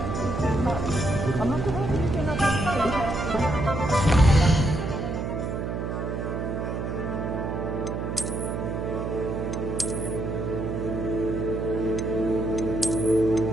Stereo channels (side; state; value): right; noise; hum, 3 dB below the sound